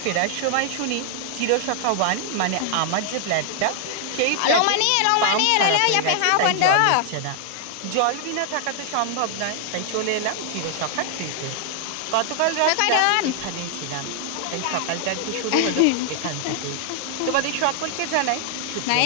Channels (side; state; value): both; different; correlation 0.00